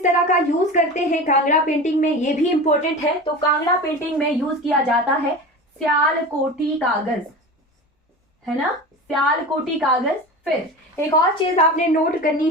तरह का यूज करते हैं कांगड़ा पेंटिंग में, ये भी इंपॉर्टेंट है। तो कांगड़ा पेंटिंग में यूज किया जाता है स्यालकोटी कागज, है ना, स्यालकोटी कागज। फिर एक और चीज आपने नोट करनी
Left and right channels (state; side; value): normal; both; correlation 0.31